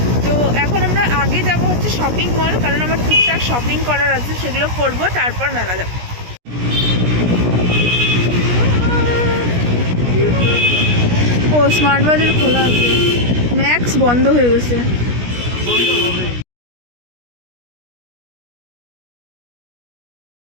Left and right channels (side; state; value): left; late; 17 ms